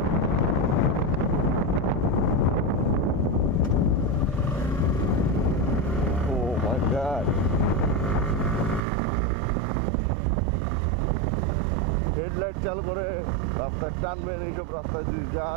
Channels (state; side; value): drops out; left; at 8.8 s